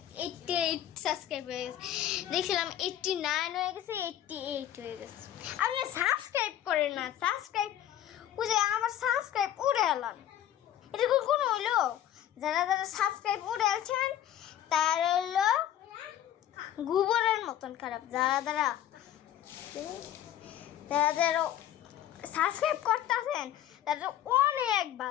সাবস্ক্রাইব হয়ে গেছে, দেখছিলাম 89 হয়ে গেছে, 88 হয়ে গেছে। আপনি সাবস্ক্রাইব করেন না, সাবস্ক্রাইব বুঝে আমার সাবস্ক্রাইব উড়ে এলাম, এটা কোনো হইলো? যারা যারা সাবস্ক্রাইব উড়ে আলছেন তার হইলো গোবরের মতন খারাপ। যারা যারা যারা যারা সাবস্ক্রাইব করতেছেন তারা অনেক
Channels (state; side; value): quieter; right; 11.6 dB